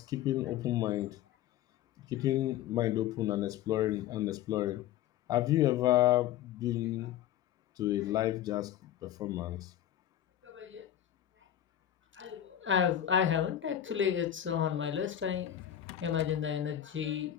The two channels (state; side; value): quieter; right; 11.3 dB